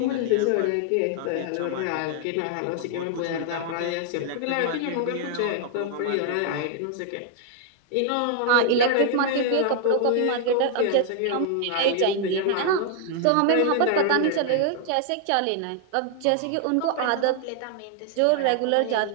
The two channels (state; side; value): different; both; correlation 0.00